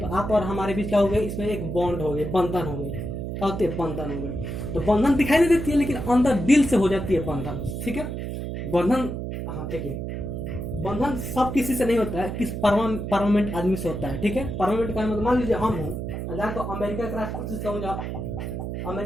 आप और हमारे बीच क्या हो गए, इसमें एक बॉन्ड हो गई, बंधन हो गई। क्या होती है, बंधन हो गई। तो बंधन दिखाई नहीं देती है, लेकिन अंदर दिल से हो जाती है बंधन। ठीक है, बंधन, हाँ ठीक है, बंधन सब किसी से नहीं होता है, किस परमानेंट आदमी से होता है। ठीक है, परमानेंट का मतलब मान लीजिए हम हूँ, जाकर अमेरिका के राष्ट्रपति से कहूँ, अमेरिका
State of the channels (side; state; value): right; noise; hum, 5 dB below the sound